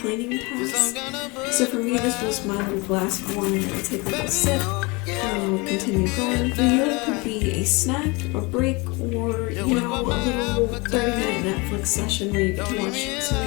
cleaning task. So for me, this was my little glass of wine. I would take a little sip, and I would continue going. For you, it could be a snack, a break, or a little 30-minute Netflix session where you get to watch some of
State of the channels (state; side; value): quieter; right; 26.8 dB